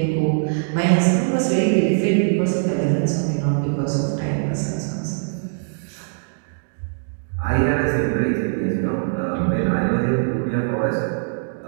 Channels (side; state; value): left; silent; digital silence